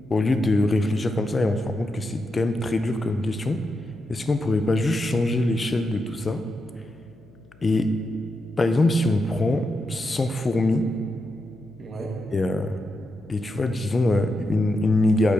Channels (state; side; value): noise; left; hum, 27 dB below the sound